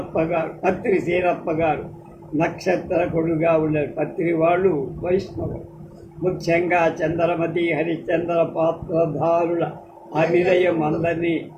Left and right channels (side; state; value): both; identical; correlation 1.00